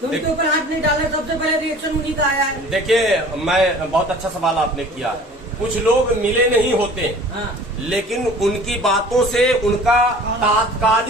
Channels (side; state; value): both; normal; correlation 0.46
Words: तो उनके ऊपर हाथ नहीं डाला, सबसे पहले रिएक्शन उन्हीं का आया है। देखिए, मैं बहुत अच्छा सवाल आपने किया। कुछ लोग मिले नहीं होते, लेकिन उनकी बातों से उनका